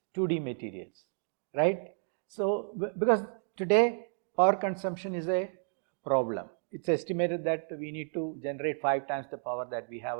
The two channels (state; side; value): silent; left; 57 dB below the other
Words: 2D materials, right? So because today power consumption is a problem. It's estimated that we need to generate 5 times the power that we have,